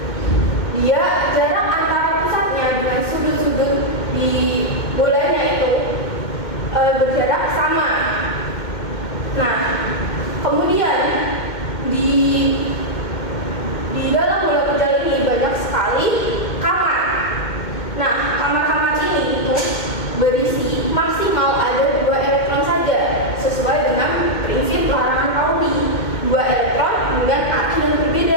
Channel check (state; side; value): late; right; 2.1 ms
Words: maksimal ada 2 elektron saja, sesuai dengan prinsip larangan Pauli, 2 elektron dengan arti yang